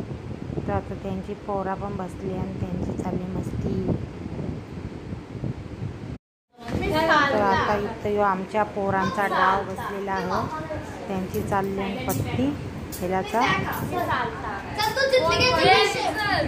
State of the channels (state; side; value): identical; both; correlation 1.00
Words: तर आता त्यांची पोरा पण बसली आणि त्यांची चालली मस्ती. तर आता इथं आमच्या पोरांचा डाव बसलेला आहे. त्यांची चालली पत्ती खेळाचा.